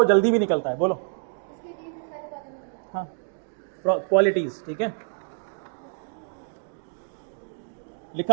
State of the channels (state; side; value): silent; left; digital silence